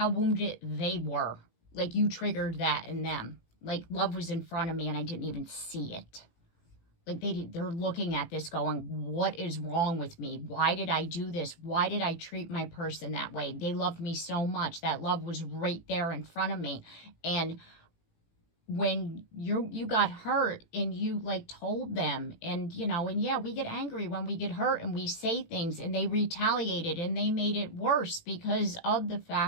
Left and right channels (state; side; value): late; right; 18 ms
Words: wounded they were. Like, you triggered that in them. Like, love was in front of me and I didn't even see it. Like, they're looking at this going, what is wrong with me? Why did I do this? Why did I treat my person that way? They loved me so much. That love was right there in front of me. And when you got hurt and you like told them, and you know, and yeah, we get angry when we get hurt and we say things, and they retaliated and they made it worse because of the